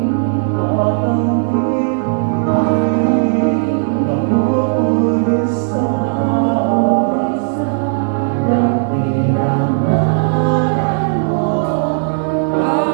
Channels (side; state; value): left; silent; digital silence